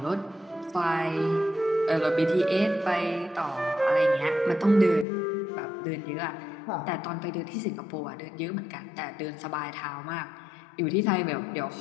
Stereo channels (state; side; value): drops out; right; at 5.1 s